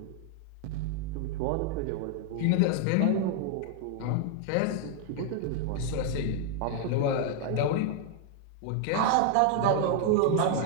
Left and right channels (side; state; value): both; different; correlation 0.00